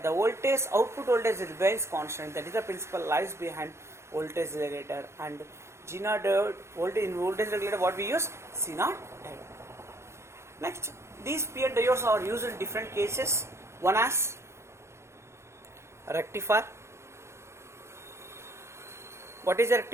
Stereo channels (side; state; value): left; late; 0.13 ms